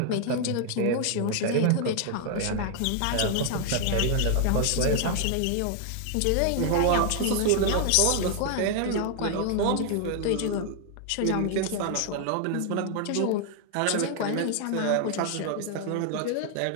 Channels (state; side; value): different; both; correlation 0.00